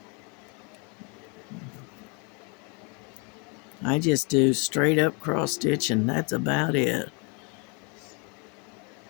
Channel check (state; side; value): quieter; right; 33.9 dB